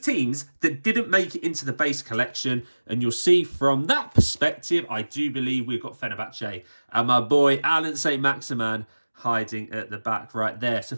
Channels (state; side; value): inverted; both; correlation -1.00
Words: that didn't make it into the base collection. And you'll see from that perspective, I do believe we've got Fenerbahce and my boy Alan St. Maximan hiding at the back right there. So